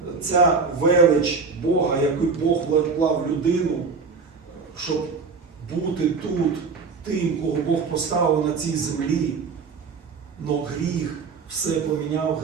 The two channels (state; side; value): quieter; left; 4.9 dB